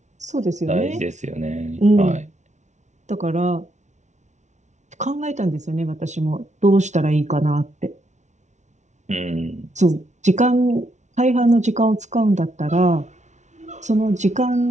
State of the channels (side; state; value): left; late; 0.34 ms